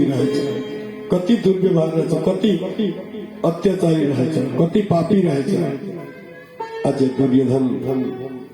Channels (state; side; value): identical; both; correlation 1.00